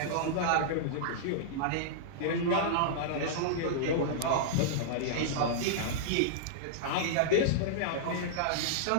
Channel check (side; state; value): both; different; correlation -0.02